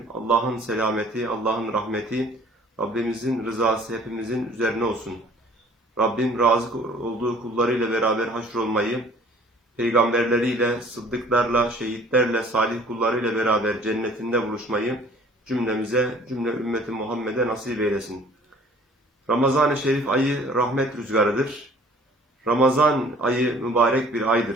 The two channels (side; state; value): both; normal; correlation 0.52